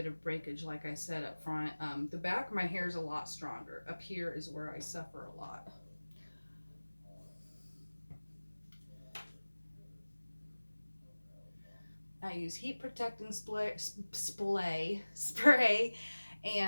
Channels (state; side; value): inverted; both; correlation -1.00